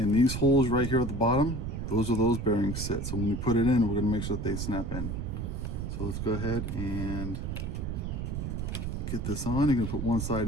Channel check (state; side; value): noise; right; rumble, 4 dB below the sound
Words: these holes right here at the bottom, those are those bearings sit. So when you put it in, we're going to make sure that they snap in. So let's go ahead and get this on. You're going to put one